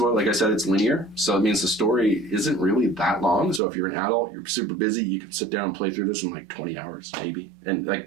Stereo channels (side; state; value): left; drops out; at 3.6 s